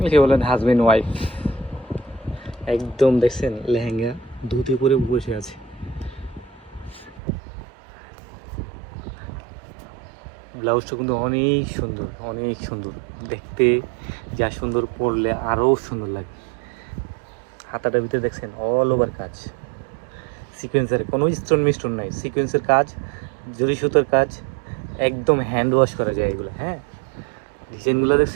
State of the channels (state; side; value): drops out; left; at 7.2 s